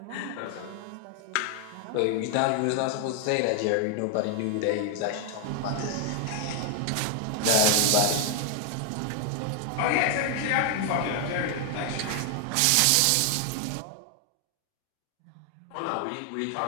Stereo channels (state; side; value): different; both; correlation 0.00